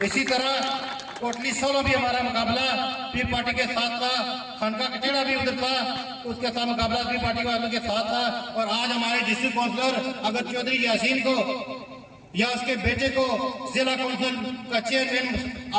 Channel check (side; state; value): both; identical; correlation 1.00